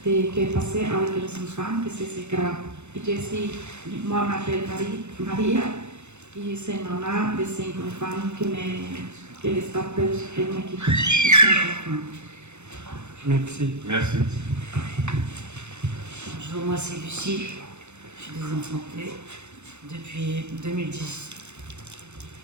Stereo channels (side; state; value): left; late; 0.82 ms